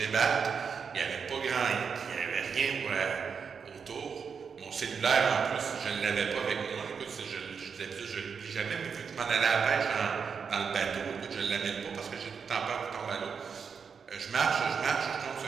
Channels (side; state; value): left; quieter; 6.1 dB